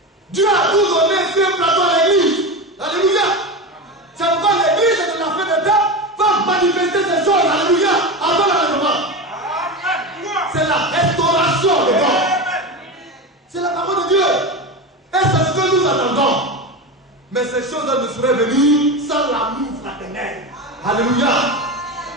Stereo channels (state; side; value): normal; both; correlation 0.22